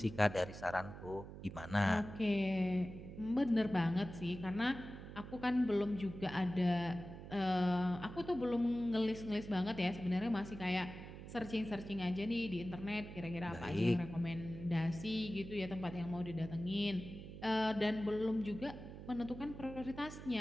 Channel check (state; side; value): noise; right; hum, 12 dB below the sound